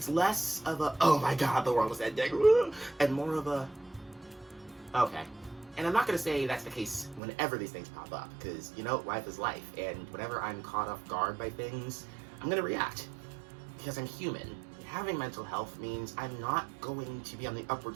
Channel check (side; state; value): left; drops out; at 7.2 s